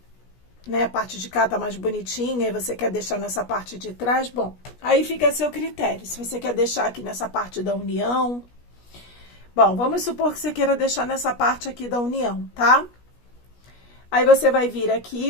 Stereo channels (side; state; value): right; late; 17 ms